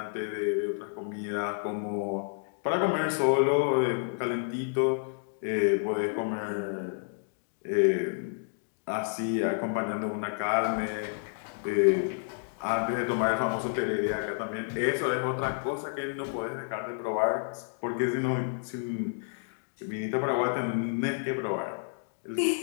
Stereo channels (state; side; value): silent; right; digital silence